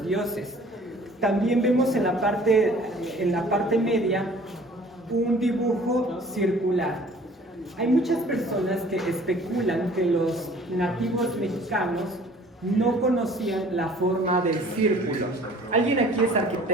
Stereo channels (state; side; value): normal; both; correlation 0.52